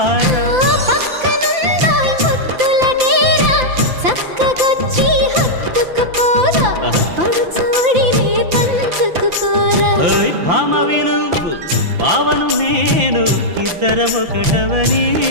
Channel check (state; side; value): late; left; 5.9 ms